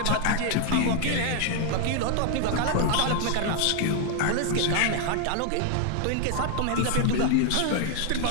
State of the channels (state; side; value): different; both; correlation 0.00